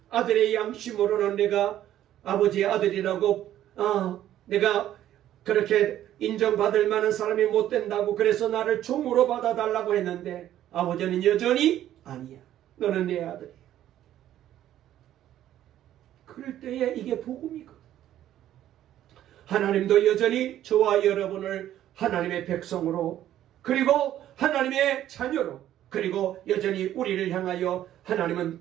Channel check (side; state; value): left; quieter; 12.2 dB